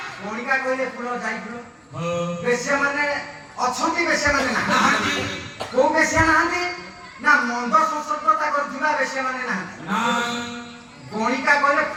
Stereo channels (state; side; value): identical; both; correlation 1.00